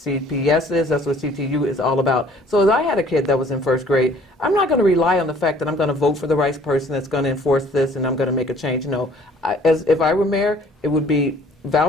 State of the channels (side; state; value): both; normal; correlation 0.56